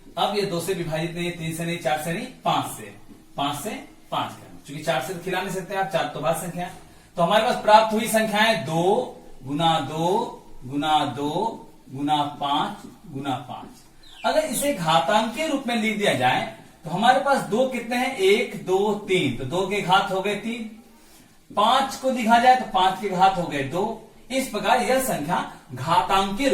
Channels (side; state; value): both; identical; correlation 1.00